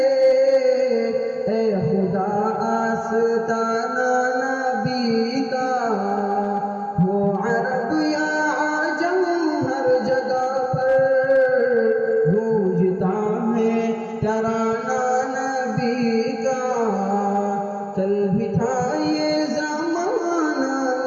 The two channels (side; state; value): both; identical; correlation 1.00